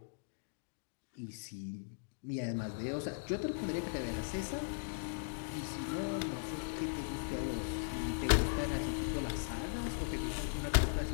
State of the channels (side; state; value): right; silent; digital silence